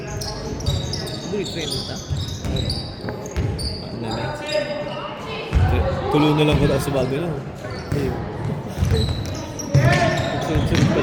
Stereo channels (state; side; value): identical; both; correlation 1.00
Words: Buli train ta. Ano na? Tuloy na lang ko sa bago lang. Sunod-sunod